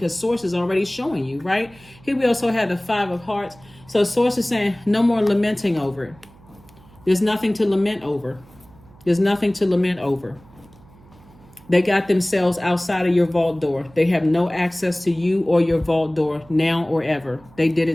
source is already showing you, right? Here we also have the 5 of Hearts. So source is saying no more lamenting over it. There's nothing to lament over. There's nothing to lament over. They got themselves outside of your vault door. They have no access to you or your vault door now or ever. They did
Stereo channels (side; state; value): right; noise; hum, 25 dB below the sound